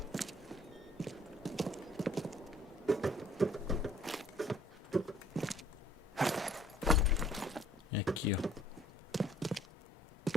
É aqui, ó.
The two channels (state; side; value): normal; both; correlation 0.58